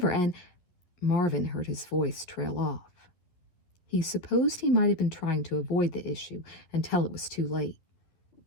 and—" Marvin heard his voice trail off. He supposed he might have been trying to avoid the issue until it was too late.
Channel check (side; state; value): right; late; 11 ms